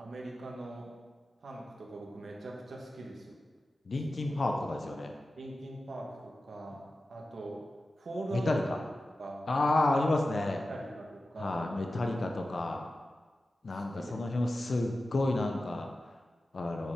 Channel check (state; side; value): normal; both; correlation 0.94